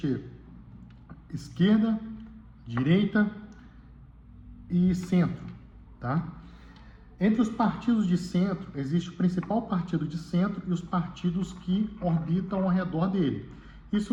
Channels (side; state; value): both; identical; correlation 1.00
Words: esquerda, direita e centro, tá? Entre os partidos de centro, existe o principal partido de centro e os partidos que orbitam ao redor dele. Isso